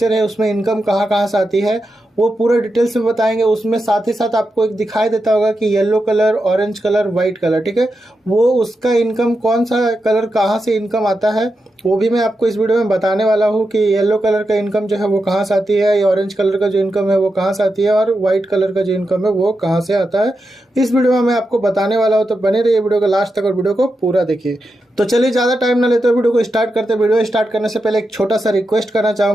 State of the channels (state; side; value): normal; both; correlation 0.88